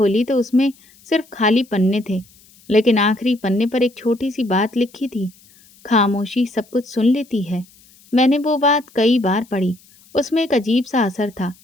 तो उसमें सिर्फ खाली पन्ने थे, लेकिन आखिरी पन्ने पर एक छोटी सी बात लिखी थी। खामोशी सब कुछ सुन लेती है। मैंने वो बात कई बार पढ़ी। उसमें एक अजीब सा असर था,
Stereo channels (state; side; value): noise; left; hiss, 28 dB below the sound